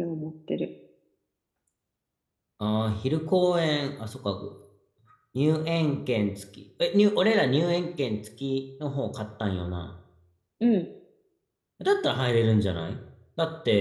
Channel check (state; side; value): identical; both; correlation 1.00